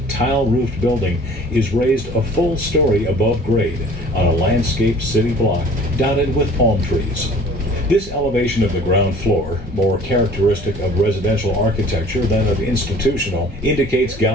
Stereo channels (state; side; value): normal; both; correlation 0.49